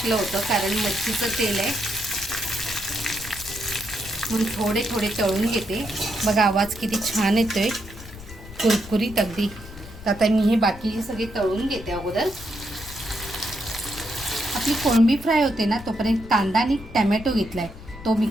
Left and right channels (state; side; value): noise; left; rumble, 15 dB below the sound